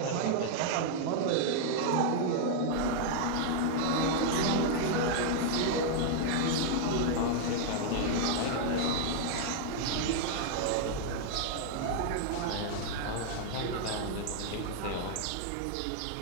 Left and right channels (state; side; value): different; both; correlation 0.00